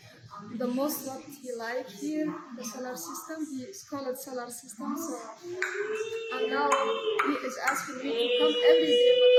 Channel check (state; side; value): identical; both; correlation 1.00